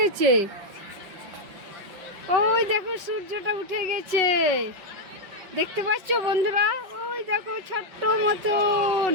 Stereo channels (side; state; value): left; late; 5.3 ms